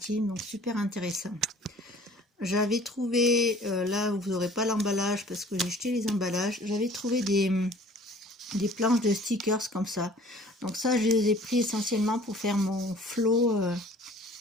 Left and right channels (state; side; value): normal; both; correlation 0.51